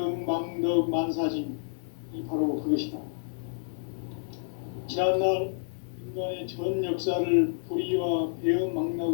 망덕 만사진, 이 바로 그것이다. 지난날 인간의 전 역사를 불의와 배음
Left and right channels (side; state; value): right; silent; digital silence